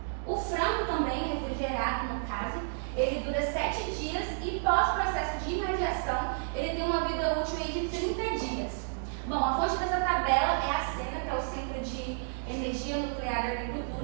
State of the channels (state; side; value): silent; left; digital silence